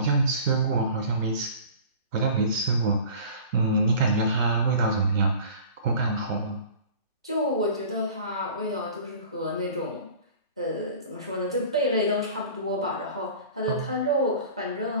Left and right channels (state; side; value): inverted; both; correlation -0.42